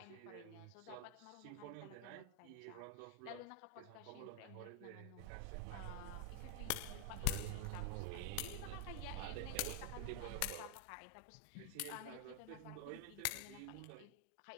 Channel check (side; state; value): both; different; correlation 0.01